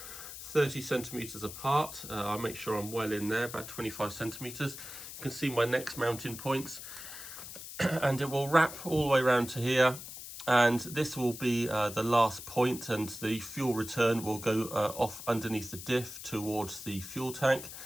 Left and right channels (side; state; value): left; noise; hiss, 11 dB below the sound